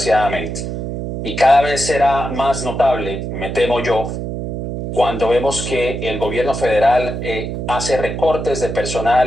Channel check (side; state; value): right; noise; hum, 5 dB below the sound